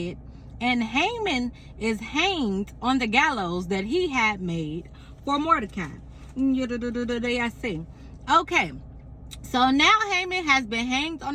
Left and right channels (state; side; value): identical; both; correlation 1.00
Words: and Haman is hanged on the gallows that he had made for Mordecai. Okay, so now Haman has been hanged on